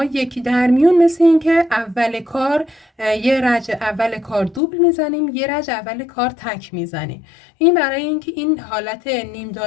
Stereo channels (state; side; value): drops out; right; at 4.6 s